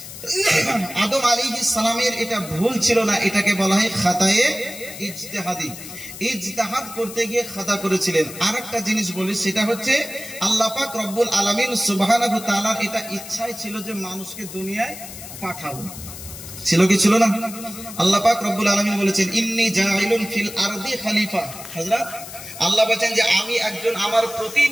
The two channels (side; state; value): left; noise; hiss, 13 dB below the sound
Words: আদম আলাইহিস সালামের এটা ভুল ছিল না, এটাকে বলা হয় খাতায়ে ইজতিহাদি। ইজতিহাদ করতে গিয়ে খাতা করেছিলেন। আরেকটা জিনিস বলি, সেটা হচ্ছে আল্লাহ পাক রব্বুল আলামিন সুবহানাহু ওয়া তাআলার এটা ইচ্ছাই ছিল যে মানুষকে দুনিয়ায় পাঠাবো। ছিল কি ছিল না? আল্লাহ পাক রব্বুল আলামিন বলেছেন ইন্নী জাইলুন ফিল আরদি খলিফা। হযরত আল্লাহ বলেন যে আমি একজন আমার